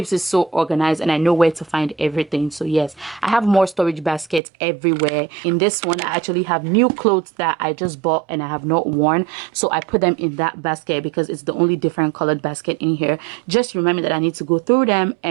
it so organized and I know where to find everything. So yes, I have more storage baskets everywhere. In this one, I actually have new clothes that I just bought and I have not worn, so I put them in that basket because it's the only different colored basket in here. Just remember that I need to go through them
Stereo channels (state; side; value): drops out; left; at 4.4 s